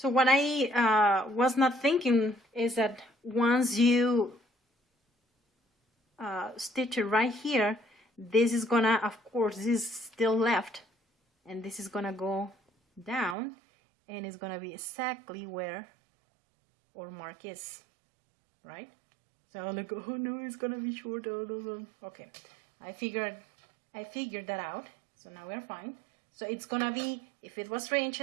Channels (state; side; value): drops out; left; at 13.4 s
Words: what I was not thinking is that once you stitch it right here, this is gonna, of course, this is still left, and this is gonna go down, and it's gonna be exactly where our mark is, right? So I'm like, oh no, it's gonna be short. Okay, I figured that out. So now we're fine. So it's gonna be, if it was 3